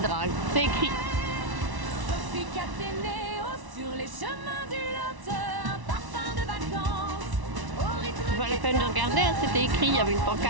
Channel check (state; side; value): late; left; 1.1 ms